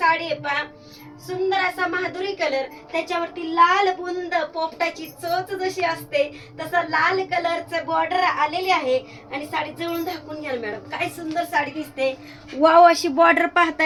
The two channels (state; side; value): identical; both; correlation 1.00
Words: आहे पहा. सुंदर असा माधुरी कलर, त्याच्यावरती लाल बुंद पोपटाची चोच जशी असते तसा लाल कलरचं बॉर्डर आलेली आहे. आणि साडी जवळून दाखवून घ्या मॅडम, काय सुंदर साडी दिसते. वाव, अशी बॉर्डर